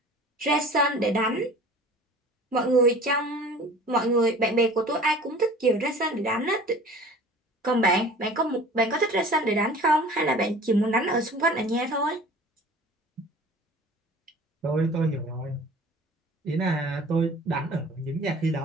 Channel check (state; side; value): normal; both; correlation 0.44